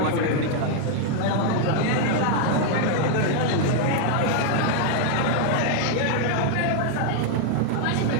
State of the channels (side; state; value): both; different; correlation 0.00